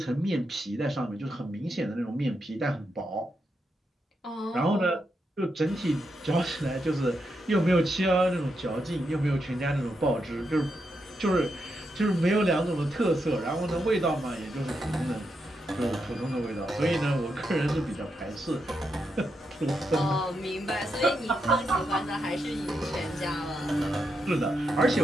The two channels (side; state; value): both; normal; correlation 0.84